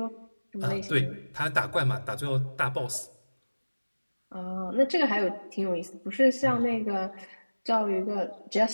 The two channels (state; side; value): inverted; both; correlation -1.00